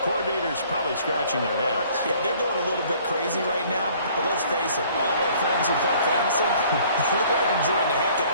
coordinators probably scratching their heads. Yeah, they're going a little bit crazy right now, but let's face it, all of our friends who play fantasy, they're enjoying the heck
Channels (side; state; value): both; inverted; correlation -0.56